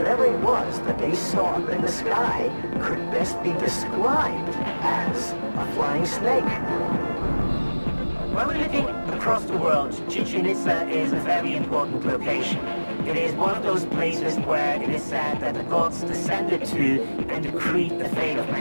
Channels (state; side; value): inverted; both; correlation -1.00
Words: it was that they saw up in the sky could best be described as a flying snake. When we're looking across the world, Chichen Itza is a very important location. It is one of those places where it is said that the gods descended to and decreed the fate of